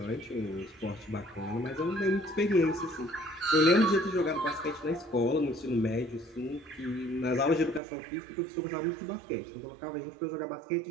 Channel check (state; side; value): drops out; left; at 7.8 s